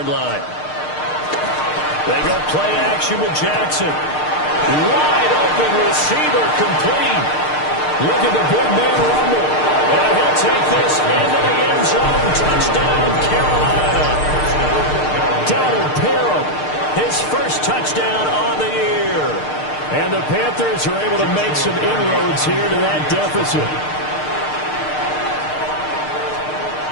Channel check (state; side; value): late; right; 6.6 ms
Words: line. They go play action with Jackson. Wide open receiver, complete. Look at the big man rumble. And he'll take this into the end zone. Touchdown, Carolina. Donald Parham, his first touchdown on the year. And the Panthers are able to make some inroads here to that deficit.